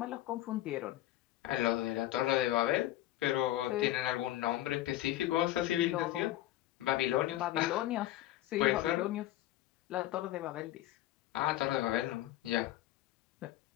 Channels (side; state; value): right; quieter; 14.8 dB